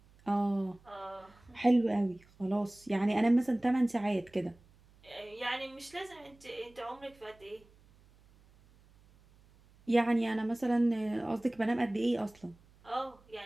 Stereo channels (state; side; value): noise; right; hum, 28 dB below the sound